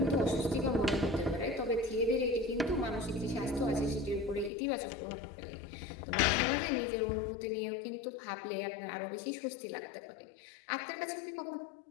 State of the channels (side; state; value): right; drops out; at 4.5 s